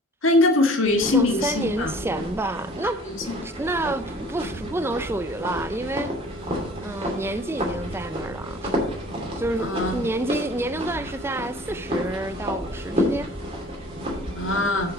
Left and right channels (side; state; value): both; normal; correlation 0.49